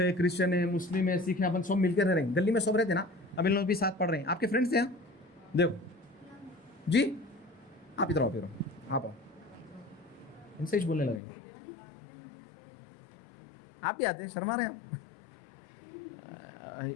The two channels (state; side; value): drops out; right; at 11.2 s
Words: क्रिश्चियन है, मुस्लिम है, सिख है, अपन सब मिलकर रह रहे हैं। गली में सब रहते ना, अब इन लोग भी साथ पढ़ रहे हैं, आपके फ्रेंड्स हैं, देखो जी, आप इधर आओ, फिर आप आओ, इनसे ही बोलने लगे, आप भी आते हैं, शर्मा रहे हैं।